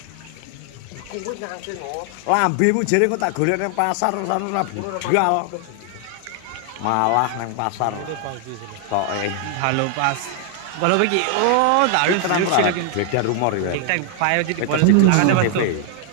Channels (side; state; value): both; different; correlation 0.00